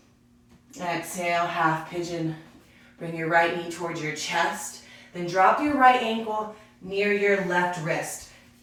Exhale, half pigeon. Bring your right knee towards your chest. Then drop your right ankle near your left wrist.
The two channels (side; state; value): both; identical; correlation 1.00